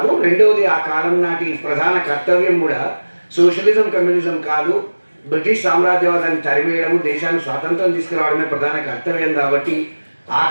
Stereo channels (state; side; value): inverted; both; correlation -1.00